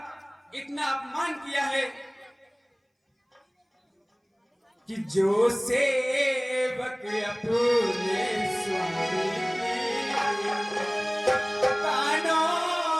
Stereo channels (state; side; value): identical; both; correlation 1.00